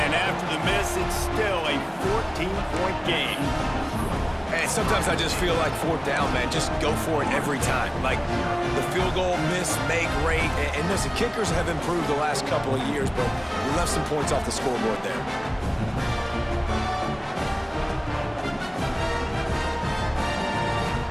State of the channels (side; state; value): both; identical; correlation 1.00